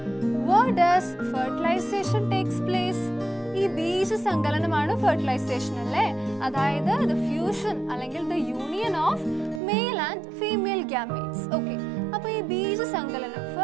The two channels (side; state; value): left; drops out; at 9.6 s